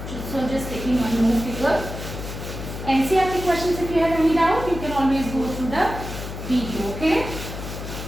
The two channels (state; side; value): noise; left; hum, 8 dB below the sound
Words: So just taking one more figure. NCERT questions, if you have any doubt, you can always go through the video. Okay.